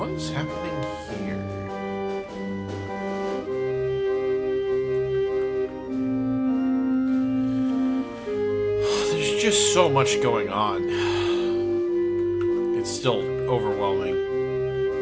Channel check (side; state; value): both; identical; correlation 1.00